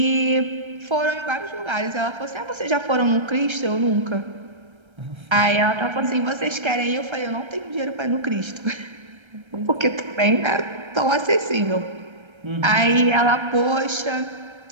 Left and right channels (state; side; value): late; left; 1.3 ms